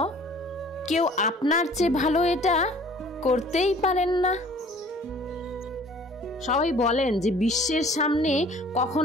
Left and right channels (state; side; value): normal; both; correlation 0.51